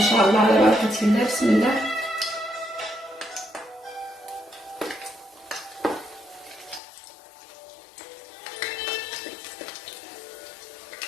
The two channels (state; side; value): drops out; right; at 6.8 s